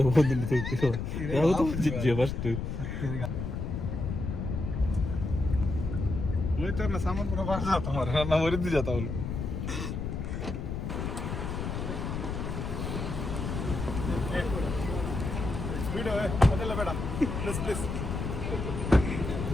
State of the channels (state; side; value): noise; left; rumble, 4 dB below the sound